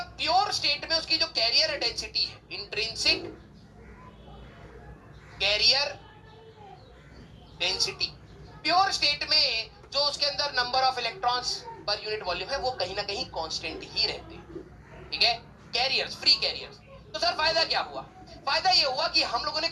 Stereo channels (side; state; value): both; identical; correlation 1.00